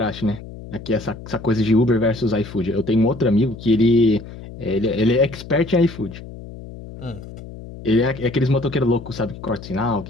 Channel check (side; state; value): left; noise; hum, 14 dB below the sound